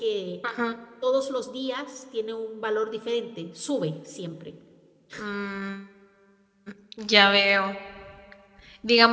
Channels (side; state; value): both; identical; correlation 1.00